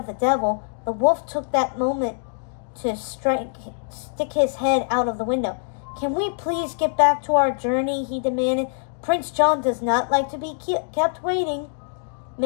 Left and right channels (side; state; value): right; silent; digital silence